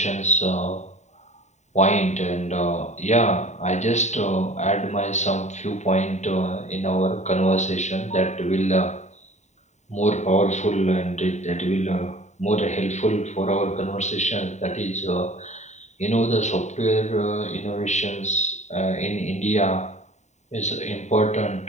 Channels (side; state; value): right; late; 0.34 ms